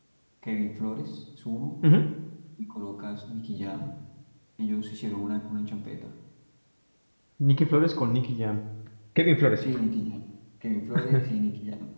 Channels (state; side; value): inverted; both; correlation -1.00